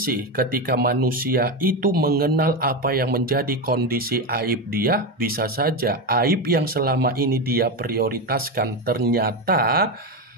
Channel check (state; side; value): normal; both; correlation 0.14